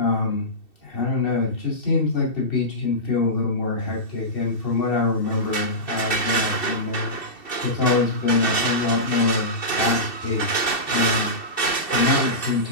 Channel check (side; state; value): right; late; 2.7 ms